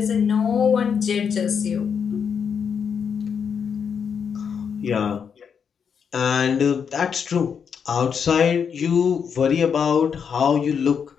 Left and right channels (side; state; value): right; quieter; 6.9 dB